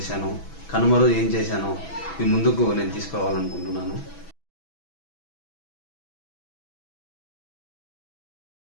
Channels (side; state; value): right; late; 6.1 ms